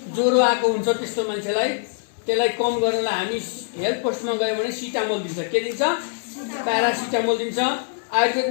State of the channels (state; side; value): silent; right; 63 dB below the other